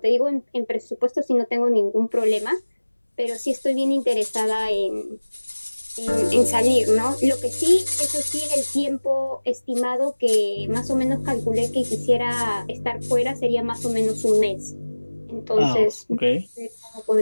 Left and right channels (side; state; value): both; inverted; correlation -1.00